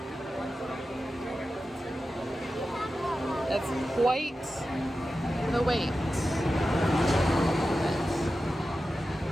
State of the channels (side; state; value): both; normal; correlation 0.92